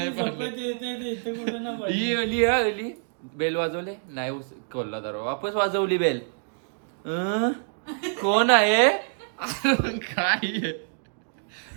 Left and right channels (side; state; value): left; silent; digital silence